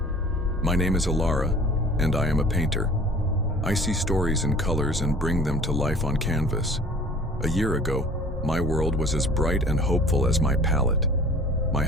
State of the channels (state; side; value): normal; both; correlation 0.47